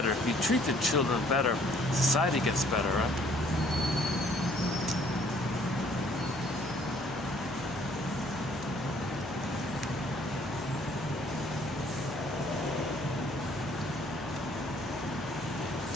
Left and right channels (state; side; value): noise; right; hum, 17 dB below the sound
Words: if you treat the children better, society gets better, right?